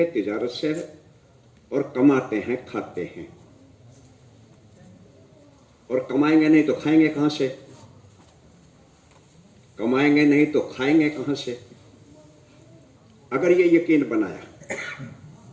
तिजारत से है, और कमाते हैं, खाते हैं। और कमाएंगे नहीं तो खाएंगे कहां से, कमाएंगे नहीं तो खाएंगे कहां से। अगर ये यकीन बनाया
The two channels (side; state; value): both; identical; correlation 1.00